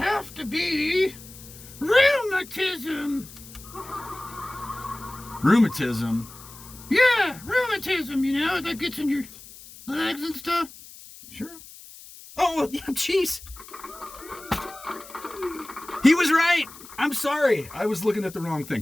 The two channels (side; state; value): left; noise; hiss, 18 dB below the sound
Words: to be rheumatism. Rheumatism? Yeah, rheumatism, that gets in your legs and stuff. Sure. Oh, yeah, jeez. He was right. I'm sorry. I was looking at the wrong